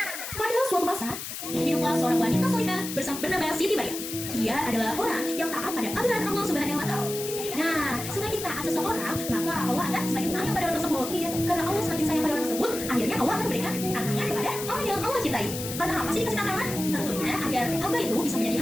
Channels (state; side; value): noise; left; hiss, 7 dB below the sound